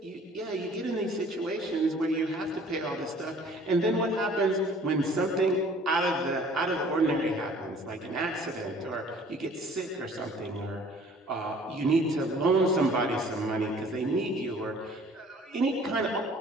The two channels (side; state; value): both; normal; correlation 0.52